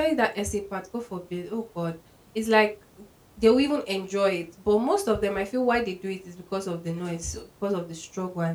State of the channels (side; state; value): both; identical; correlation 1.00